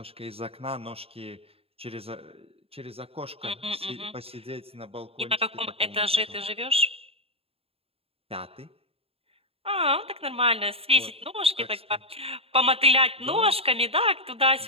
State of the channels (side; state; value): left; late; 0.28 ms